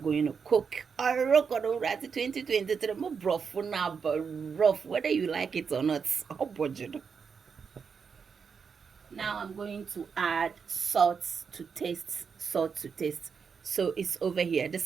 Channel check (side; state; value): left; quieter; 6.0 dB